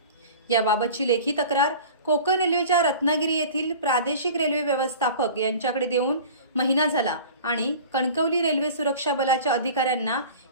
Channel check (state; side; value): inverted; both; correlation -0.40